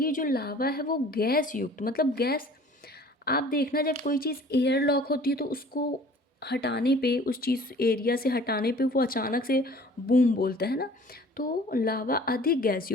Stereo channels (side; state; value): both; normal; correlation 0.49